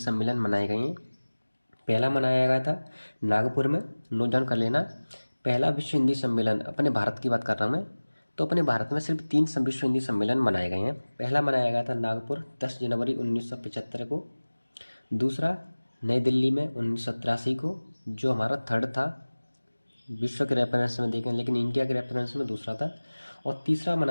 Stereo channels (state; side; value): inverted; both; correlation -1.00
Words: मनाए गए हैं। पहला मनाया गया था नागपुर में, नोट डाउन कर लेना। पहला विश्व हिंदी सम्मेलन, अपने भारत की बात कर रहा हूँ मैं, तो अपने भारत में सिर्फ 3 विश्व हिंदी सम्मेलन मनाए गए हैं। पहला मनाया गया था नागपुर 10 जनवरी 1975 को। दूसरा नई दिल्ली में 1983 को, जो हमारा थर्ड था विश्व के रेफरेंस में देखें, लेकिन इंडिया के रेफरेंस में दूसरा था। और तीसरा